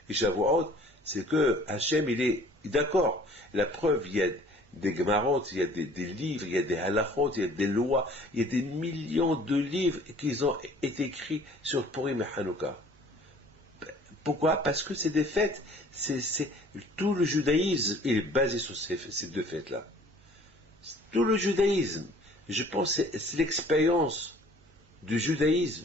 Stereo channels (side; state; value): both; normal; correlation 0.52